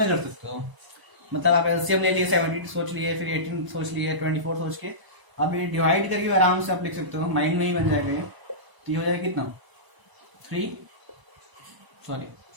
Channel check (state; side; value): late; left; 1.0 ms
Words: कर सकते हो। मतलब आप एलसीएम ले लिए, 72 सोच लिए, फिर 18 सोच लिए, 24 सोच के, अब ये डिवाइड करके आराम से आप लिख सकते हो, माइंड में ही बन जाएगा ये। तो ये हो जाएगा कितना,